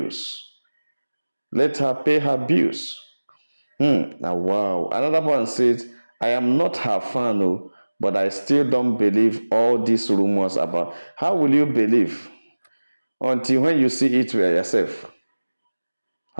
Let her pay her bills. Now, wow. Another one says, I am not her fan, oh, but I still don't believe all these rumors about. How will you believe until when you see it for yourself?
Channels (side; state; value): both; inverted; correlation -1.00